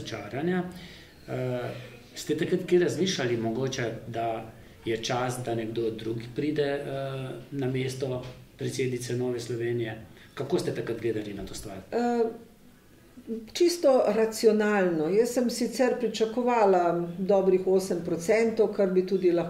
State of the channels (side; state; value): both; identical; correlation 1.00